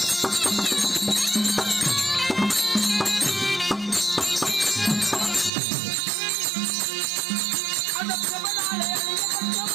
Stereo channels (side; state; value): left; drops out; at 5.5 s